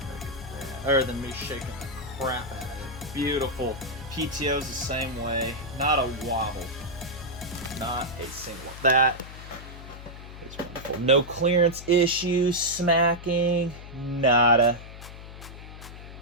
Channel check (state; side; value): noise; left; hum, 13 dB below the sound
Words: Look at that. Other than me shaking the crap out of it. Beautiful. PTO's the same way. Not a wobble. Not a single. That is wonderful. No clearance issues, smacking, nada.